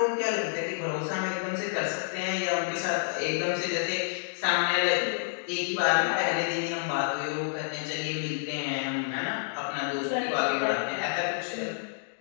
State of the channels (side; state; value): right; silent; digital silence